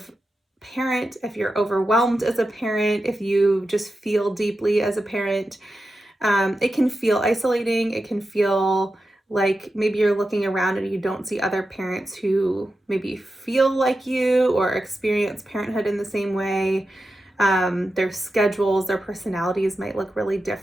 parent, if you're overwhelmed as a parent, if you just feel deeply as a parent. It can feel isolating. It can feel like maybe you're looking around and you don't see other parents who maybe feel like you or experience parenthood in the same way. Their schedules, their personalities might look really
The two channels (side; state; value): both; normal; correlation 0.91